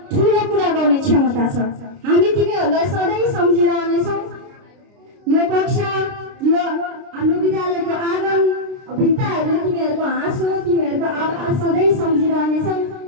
ठुलो कुरा गर्ने क्षमता छ। हामी तिमीहरूलाई सधैँ सम्झिरहनेछौँ। यो कक्षा, यो हाम्रो विद्यालयको आँगन, भित्ताहरूले तिमीहरूको हाँसो, तिमीहरूको आवाज सधैँ सम्झिरहनेछौँ।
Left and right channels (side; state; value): left; late; 29 ms